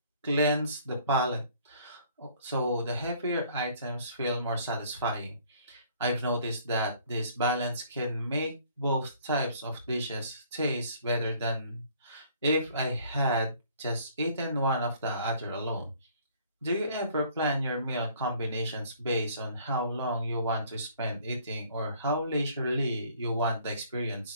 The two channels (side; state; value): both; inverted; correlation -0.58